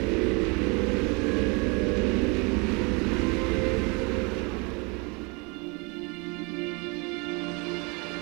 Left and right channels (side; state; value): left; quieter; 30.2 dB